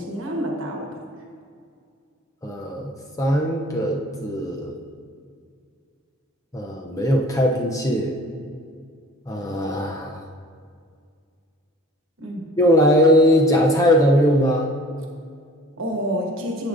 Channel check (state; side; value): normal; both; correlation 0.48